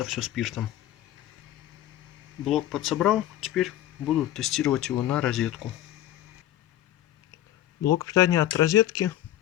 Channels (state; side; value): quieter; right; 13.1 dB